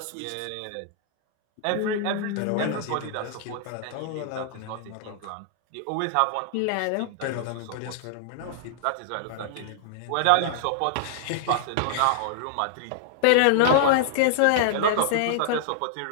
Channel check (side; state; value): both; different; correlation -0.01